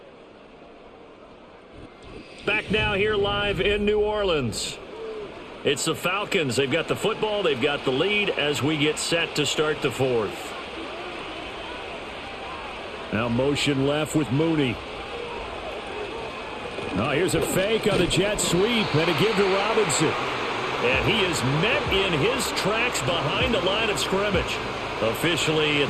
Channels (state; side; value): identical; both; correlation 1.00